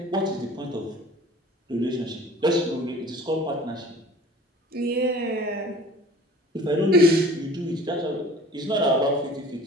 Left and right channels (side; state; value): both; normal; correlation 0.46